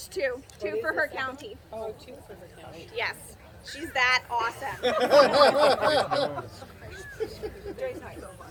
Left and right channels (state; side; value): identical; both; correlation 1.00